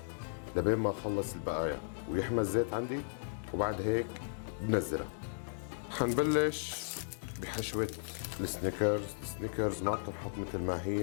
لبين ما اخلص البقايا ويحمى الزيت عندي، وبعد هيك بنزلها. حنبلش بحشوة السنيكرز ما بتنحط مثل ما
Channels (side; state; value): right; silent; digital silence